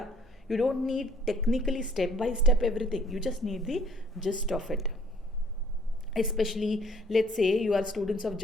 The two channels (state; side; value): normal; both; correlation 0.59